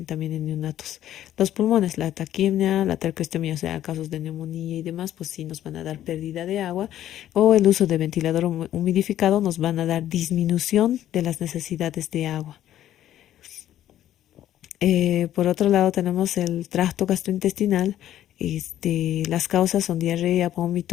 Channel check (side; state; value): right; quieter; 12.2 dB